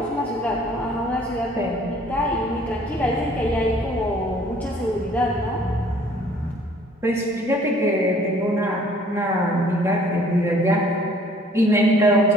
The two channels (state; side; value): normal; both; correlation 0.57